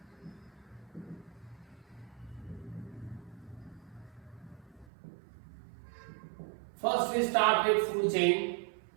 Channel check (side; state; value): left; drops out; at 4.9 s